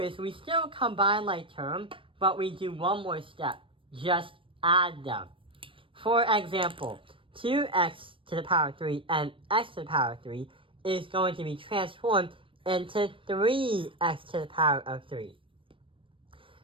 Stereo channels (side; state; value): left; late; 0.25 ms